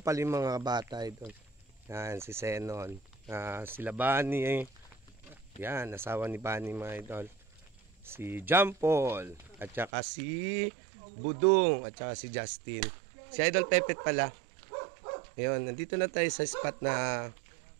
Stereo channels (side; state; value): left; drops out; at 9.9 s